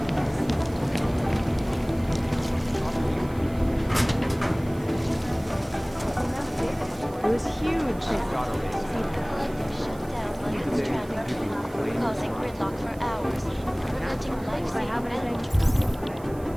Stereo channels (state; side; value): noise; right; hiss, 24 dB below the sound